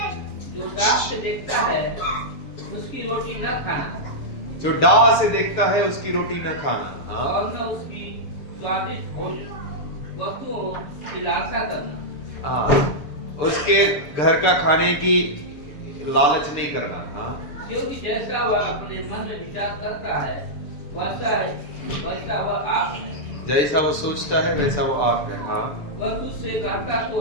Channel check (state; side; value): late; right; 6.8 ms